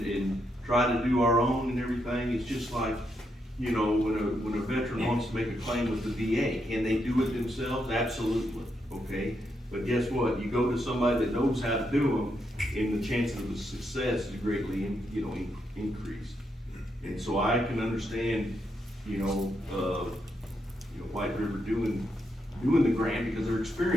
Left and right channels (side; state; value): both; normal; correlation 0.80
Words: try to do our own and everything. It's just like, you know, when a veteran wants to make a claim with the VA, can they do it themselves? Absolutely, okay? But guess what? You go to somebody that knows how to do them, and the chances of success is greatly, increased. And so I can understand, White River doing the grant because they're